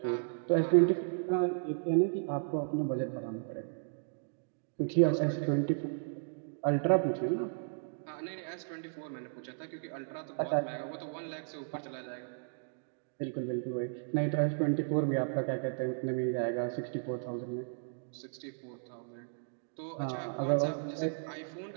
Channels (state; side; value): silent; left; digital silence